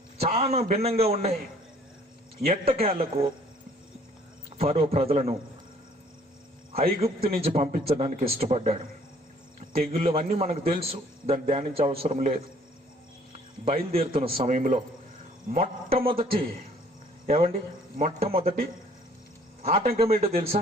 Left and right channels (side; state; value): both; normal; correlation 0.58